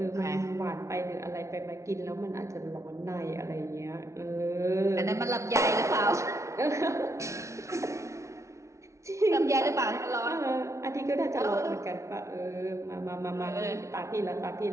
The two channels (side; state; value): left; late; 0.14 ms